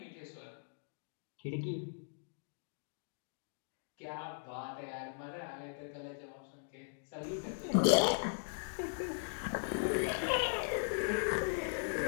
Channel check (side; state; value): right; silent; digital silence